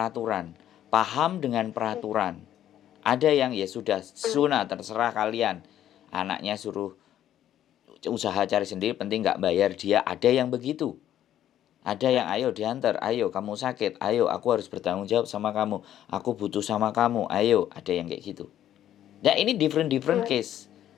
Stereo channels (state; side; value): quieter; right; 11.5 dB